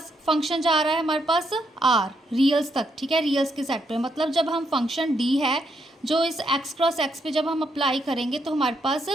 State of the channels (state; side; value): normal; both; correlation 0.77